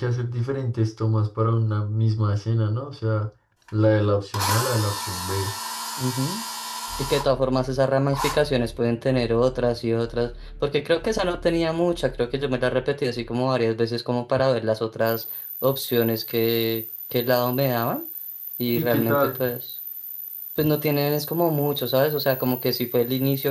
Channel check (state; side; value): identical; both; correlation 1.00